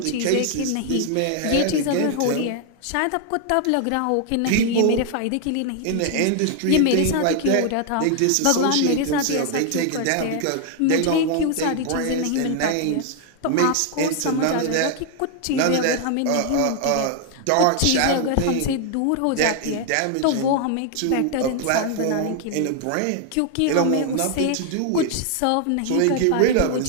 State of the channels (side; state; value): both; different; correlation 0.00